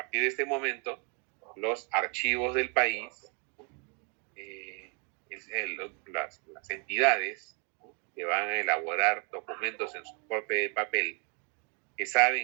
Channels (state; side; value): quieter; left; 37.0 dB